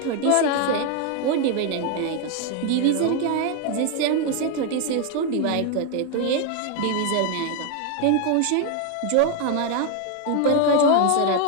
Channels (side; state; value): both; different; correlation 0.00